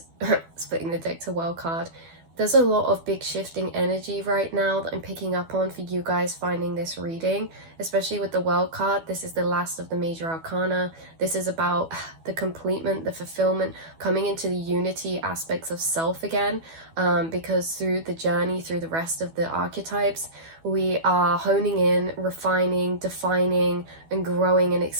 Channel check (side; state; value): left; late; 12 ms